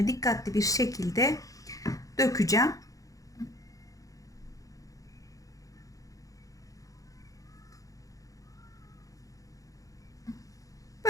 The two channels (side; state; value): right; late; 0.17 ms